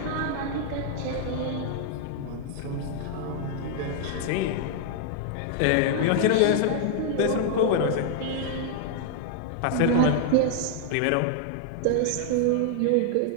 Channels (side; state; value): both; different; correlation -0.01